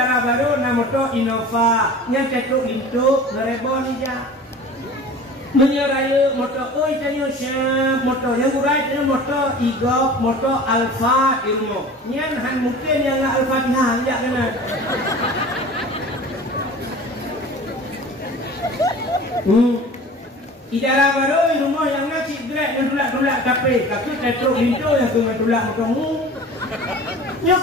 baru na motor Innova, yang tektok lintu, ngerebon aja. Menyeraya motor oi tanya siap motor yang urai tanya motor Igop motor Alfa ilmu nyan han mungkin yang Al-Fatihah ya kena idara baru rumah yang nasi grek dan dulak-dulak tapi tetruk pintu yang kena dulak motormu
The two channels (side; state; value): both; normal; correlation 0.40